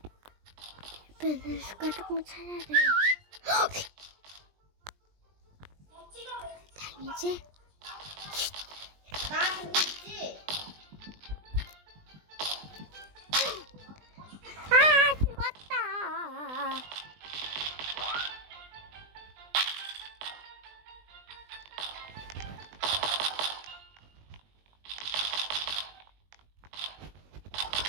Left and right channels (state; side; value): late; left; 20 ms